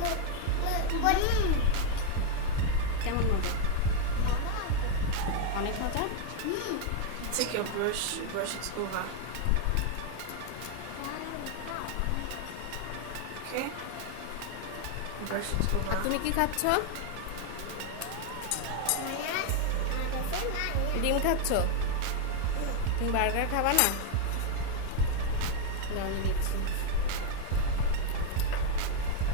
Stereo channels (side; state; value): both; different; correlation 0.00